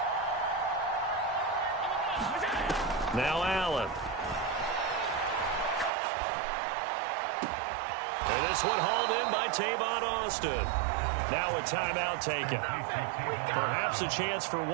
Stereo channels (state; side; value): drops out; left; at 5.9 s